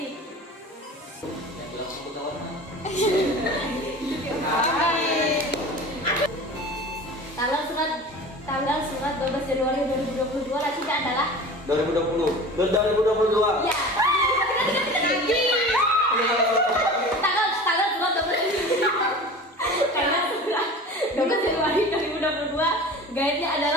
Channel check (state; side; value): normal; both; correlation 0.37